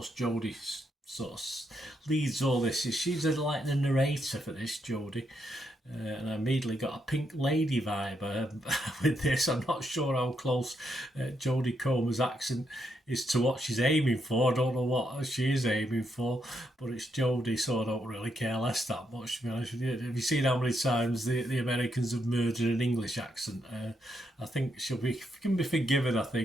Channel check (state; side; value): normal; both; correlation 0.79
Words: Jodie sort of leads all this. She's like the narrator for this, Jodie. And I immediately got a Pink Lady vibe with this. I'm not sure how close Jodie Comer's accent is to what she's aiming for. I don't know what she is aiming for, but it's Jodie, so I don't really care less that much, to be honest with you. Have you seen how many times the Americans have murdered an English accent? I think she can be forgiven, I